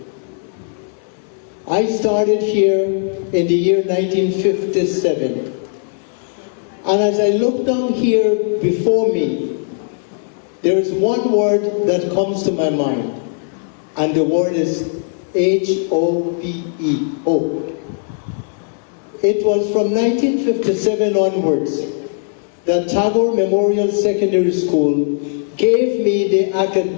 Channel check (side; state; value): right; silent; 67 dB below the other